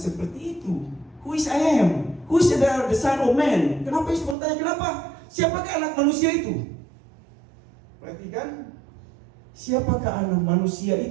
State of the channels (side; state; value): left; drops out; at 4.4 s